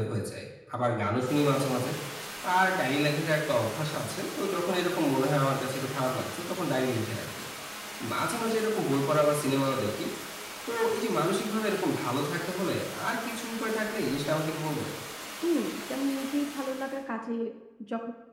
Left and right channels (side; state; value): both; identical; correlation 1.00